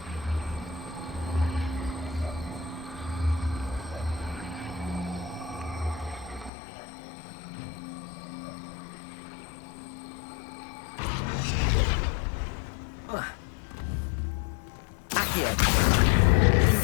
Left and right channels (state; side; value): drops out; right; at 6.5 s